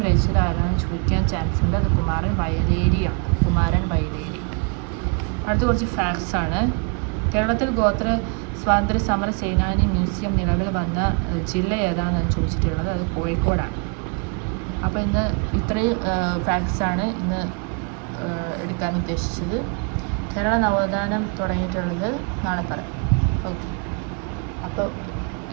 രചിച്ചത് ആരാണെന്ന് ചോദിക്കാൻ ചാൻസ് ഉണ്ട്. അത് കുമാരൻ വയലേരിയാണ്. അടുത്ത കുറച്ച് ഫാക്ട്സ് ആണ്. കേരളത്തിൽ ഗോത്ര സ്വാതന്ത്ര്യ സമര സേനാനി മ്യൂസിയം നിലവിൽ വന്ന ജില്ല ഏതാണെന്ന് ചോദിച്ചിട്ടുള്ളത്. അത് കോഴിക്കോടാണ്. അപ്പോൾ ഇന്ന് ഇത്രയും ഫാക്ട്സാണ് ഇന്ന് എടുക്കാൻ ഉദ്ദേശിച്ചത്. കേരള നവോത്ഥാനം തുടങ്ങിയിട്ടുള്ളത് നാളെ പറയാം. ഓക്കെ, അപ്പോൾ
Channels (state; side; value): quieter; left; 35.7 dB